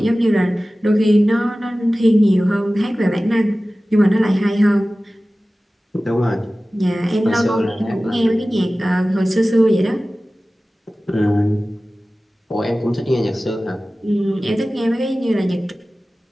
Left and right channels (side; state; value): both; normal; correlation 0.97